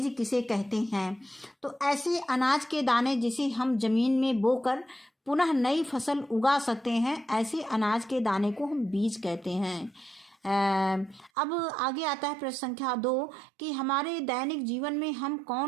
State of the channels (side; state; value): left; drops out; at 11.3 s